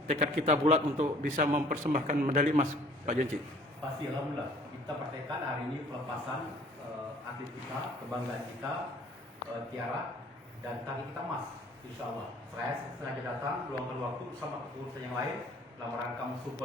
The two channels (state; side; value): normal; both; correlation 0.54